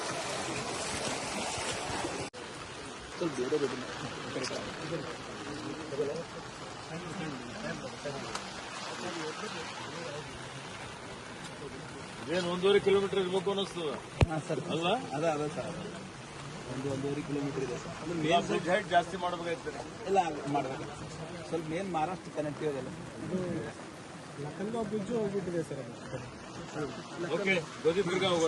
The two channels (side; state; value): both; identical; correlation 1.00